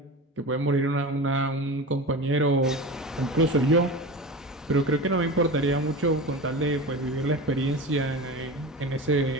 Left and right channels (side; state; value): both; normal; correlation 0.29